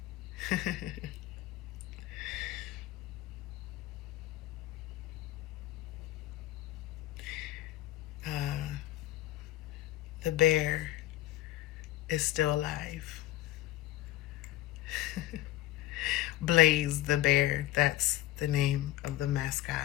the bear is still alive. Blaze the bear, that's the name of the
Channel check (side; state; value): right; quieter; 15.0 dB